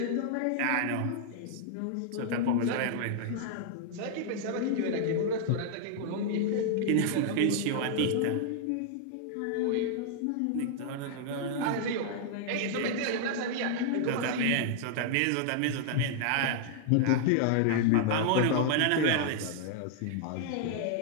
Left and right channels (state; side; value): different; both; correlation -0.01